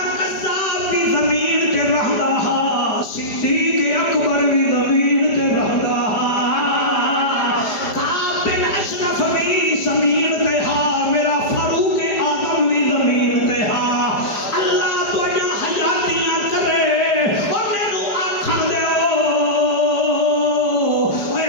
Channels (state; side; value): late; right; 4.9 ms